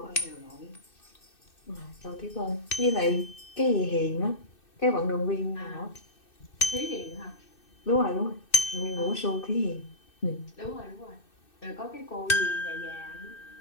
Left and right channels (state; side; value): late; right; 2.6 ms